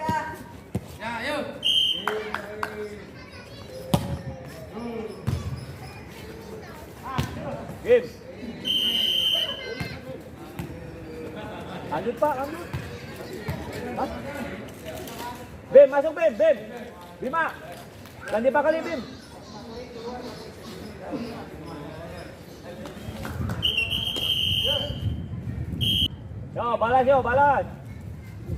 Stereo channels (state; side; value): identical; both; correlation 1.00